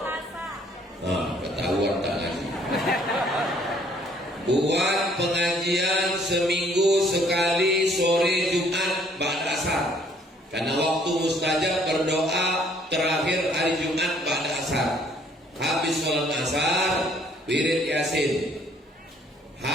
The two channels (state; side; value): normal; both; correlation 0.62